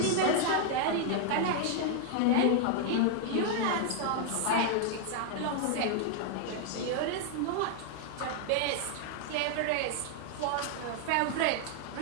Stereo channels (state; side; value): different; both; correlation 0.00